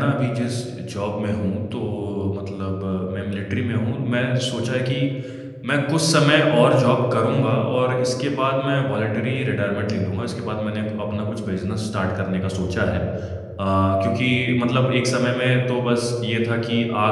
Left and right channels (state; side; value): identical; both; correlation 1.00